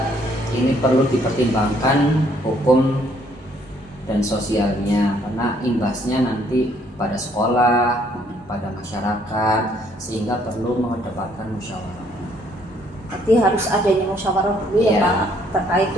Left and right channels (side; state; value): both; normal; correlation 0.66